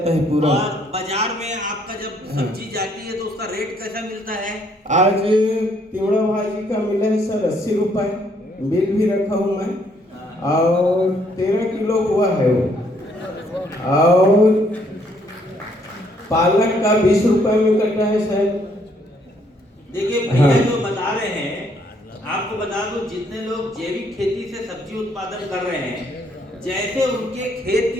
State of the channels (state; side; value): normal; both; correlation 0.68